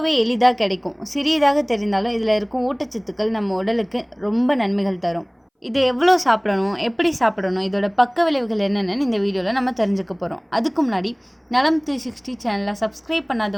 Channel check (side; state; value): both; identical; correlation 1.00